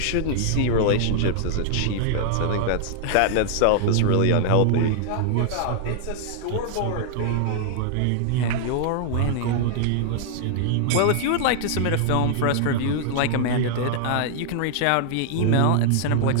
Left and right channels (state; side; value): different; both; correlation -0.01